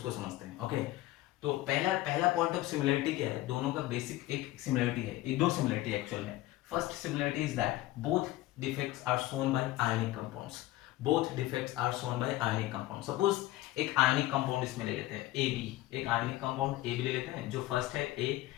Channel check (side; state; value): right; quieter; 16.6 dB